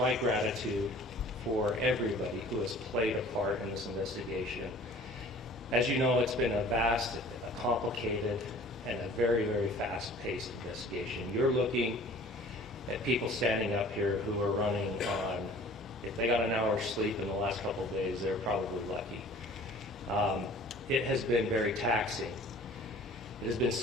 gratitude for everybody who has played a part in this investigation. As you know, it's been a vast, a complicated, and a very, very fast-paced investigation. You're looking at people standing up here who are running on, if they got an hour's sleep in the last couple of days, they're probably lucky. It has been very taxing. It has been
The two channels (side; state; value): both; normal; correlation 0.48